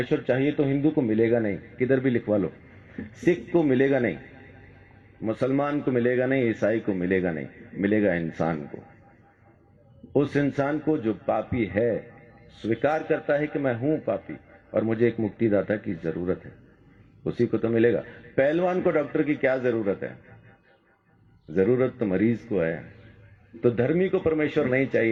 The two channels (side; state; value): both; identical; correlation 1.00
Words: चाहिए तो हिंदू को मिलेगा नहीं, किधर भी लिखवा लो। सिख को मिलेगा नहीं, मुसलमान को मिलेगा नहीं, ईसाई को मिलेगा नहीं, मिलेगा इंसान को। उस इंसान को जो पापी है, स्वीकार करता है कि मैं हूं पापी और मुझे एक मुक्तिदाता की जरूरत है, उसी को तो मिलेगा। पहलवान को डॉक्टर की क्या जरूरत है? जरूरत तो मरीज को है। तो धर्मी को परमेश्वर नहीं